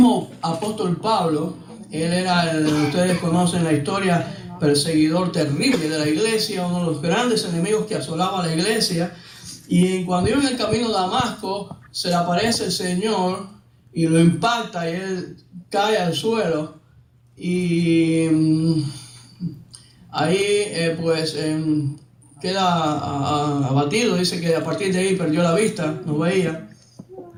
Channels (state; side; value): identical; both; correlation 1.00